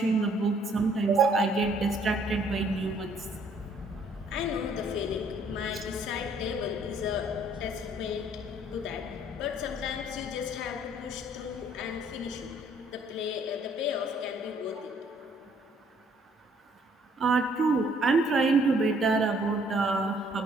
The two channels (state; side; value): normal; both; correlation 0.63